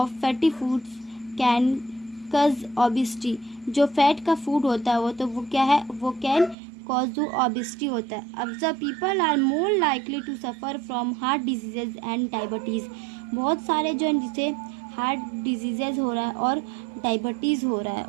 fatty foods can कज ओबेसिटी. जो फैट का फूड होता है वो क्या है, वो कैन कॉज ओबेसिटी होता है. Observe people are more likely to suffer from heart diseases and diabetes. बहुत सारे जो हैं जिसे हार्ट डिजीजेज हो रहा है और डायबिटीज़ हो रहा है.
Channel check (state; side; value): drops out; left; at 6.6 s